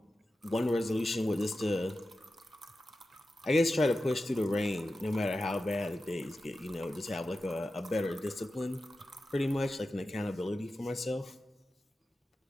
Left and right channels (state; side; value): normal; both; correlation 0.93